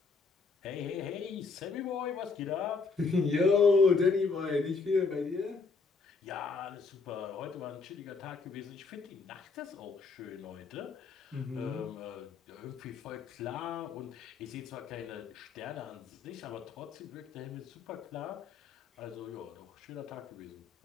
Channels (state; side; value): quieter; right; 4.5 dB